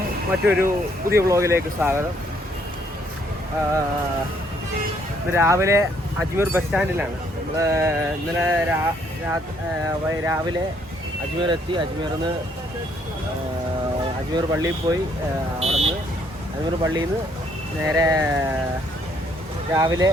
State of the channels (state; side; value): normal; both; correlation 0.68